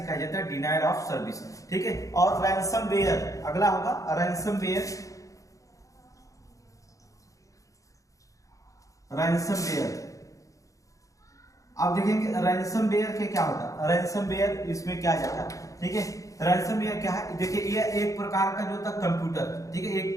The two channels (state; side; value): late; right; 0.16 ms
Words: कहा जाता है डिनायल ऑफ सर्विस, ठीक है। और रैंसमवेयर अगला होगा, रैंसमवेयर, आप देखेंगे रैंसमवेयर के क्या होता है, रैंसमवेयर इसमें क्या जाता है, ठीक है। रैंसमवेयर क्या है, देखिए ये एक प्रकार का जो होता है कंप्यूटर, ठीक है, एक